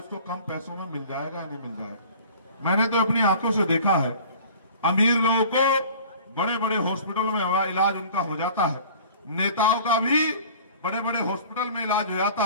कम पैसों में मिल जाएगा या नहीं मिल जाएगा। मैंने तो अपनी आंखों से देखा है, अमीर लोगों को बड़े बड़े हॉस्पिटलों में इलाज उनका हो जाता है, नेताओं का भी बड़े बड़े हॉस्पिटल में इलाज हो जाता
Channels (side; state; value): both; inverted; correlation -0.46